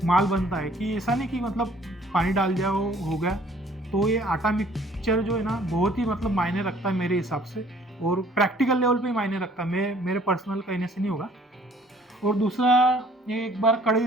माल बनता है। कि ऐसा नहीं कि मतलब पानी डाल दिया हो गया। तो ये आटा मिक्सचर जो है ना, बहुत ही मतलब मायने रखता है मेरे हिसाब से, और प्रैक्टिकल लेवल पे ही मायने रखता है, मेरे पर्सनल कहने से नहीं होगा। और दूसरा, ये एक बार कढ़ाई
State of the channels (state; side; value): normal; both; correlation 0.58